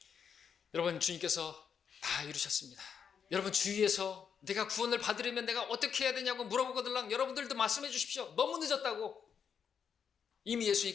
여러분, 주님께서 다 이루셨습니다. 여러분, 주위에서 내가 구원을 받으려면 내가 어떻게 해야 되냐고 물어보거들랑 여러분들도 말씀해 주십시오. 너무 늦었다고. 이미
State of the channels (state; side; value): quieter; right; 7.2 dB